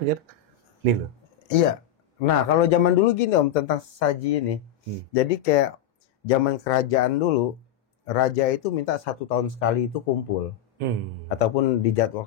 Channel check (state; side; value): quieter; right; 9.1 dB